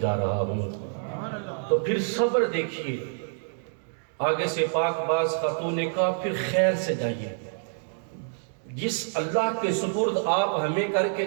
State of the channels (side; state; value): left; silent; digital silence